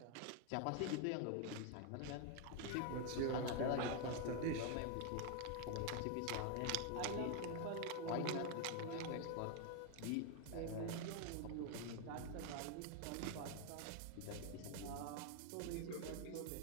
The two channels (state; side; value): different; both; correlation 0.01